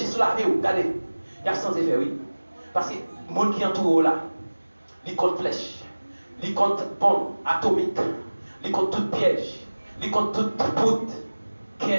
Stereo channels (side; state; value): both; inverted; correlation -1.00